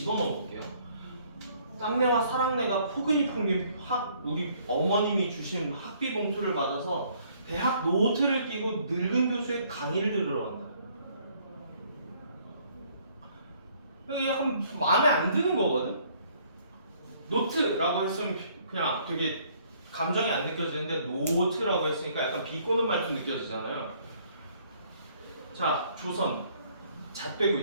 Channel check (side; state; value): both; inverted; correlation -0.63